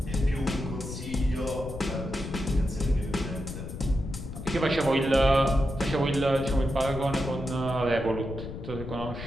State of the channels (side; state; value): left; noise; rumble, 9 dB below the sound